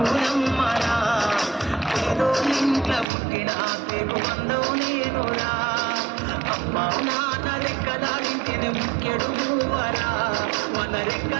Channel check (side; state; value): left; drops out; at 3.1 s